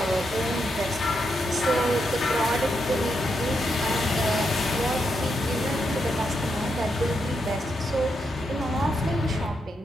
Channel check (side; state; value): both; normal; correlation 0.82